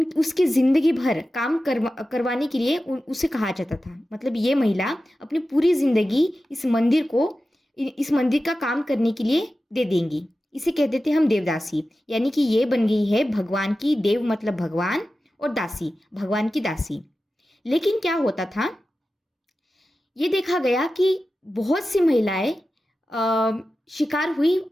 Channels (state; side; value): normal; both; correlation 0.94